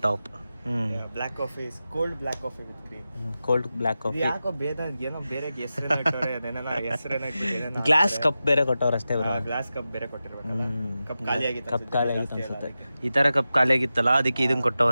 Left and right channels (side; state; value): both; inverted; correlation -0.93